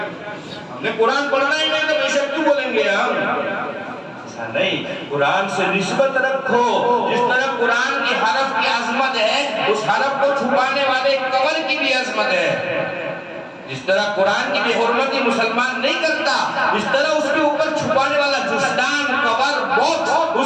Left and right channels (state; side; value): identical; both; correlation 1.00